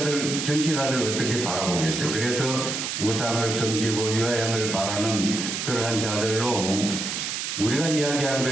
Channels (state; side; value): noise; right; hiss, 3 dB below the sound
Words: 어떻게 바라보겠어요? 그래서 우상을 섬기고 유행을 바라는 그러한 자들로 우리가 이야기한